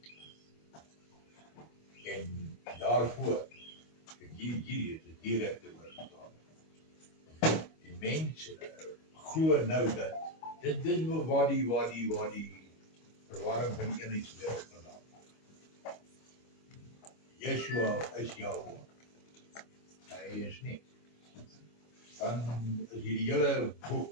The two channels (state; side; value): late; right; 25 ms